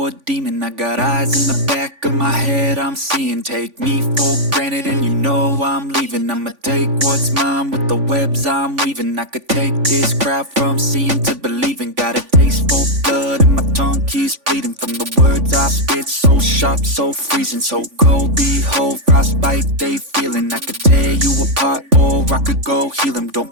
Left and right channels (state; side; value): late; left; 3.5 ms